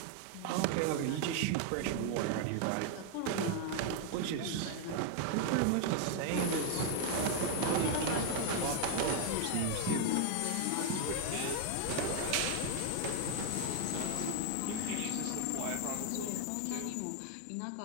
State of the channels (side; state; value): both; different; correlation 0.00